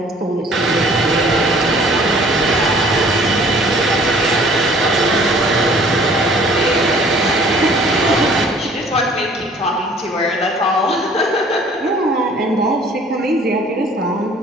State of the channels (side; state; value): both; normal; correlation 0.54